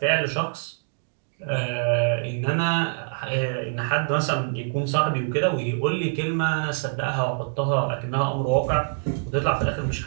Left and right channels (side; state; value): left; silent; digital silence